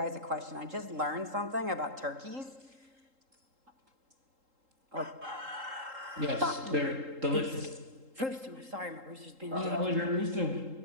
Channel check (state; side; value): late; left; 3.8 ms